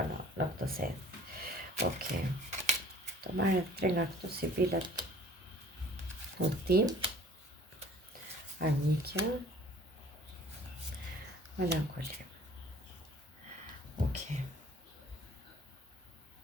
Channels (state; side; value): normal; both; correlation 0.50